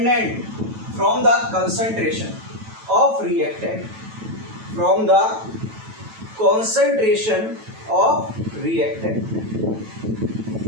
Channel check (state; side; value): late; left; 9.1 ms